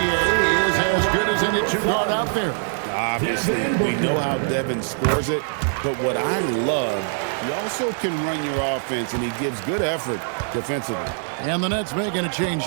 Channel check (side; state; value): left; silent; 64 dB below the other